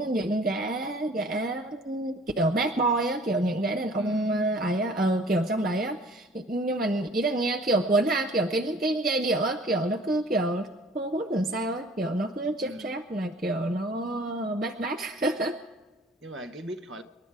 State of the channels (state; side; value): normal; both; correlation 0.51